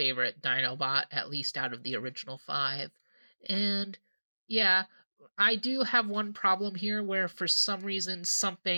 Dinobot, at least out of the original 5. And yeah, I do have one problem here where for some reason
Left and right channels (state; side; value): inverted; both; correlation -1.00